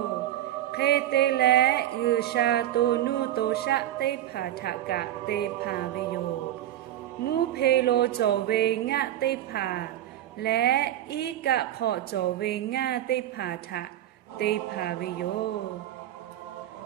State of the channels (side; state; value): left; quieter; 12.7 dB